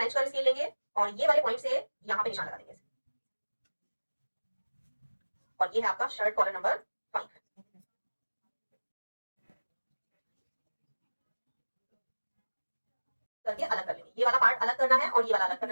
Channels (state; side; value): inverted; both; correlation -1.00